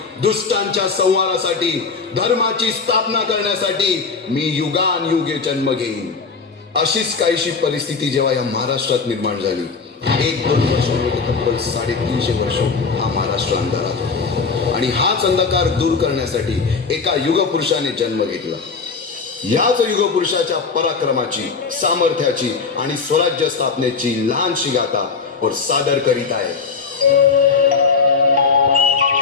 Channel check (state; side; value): quieter; right; 5.0 dB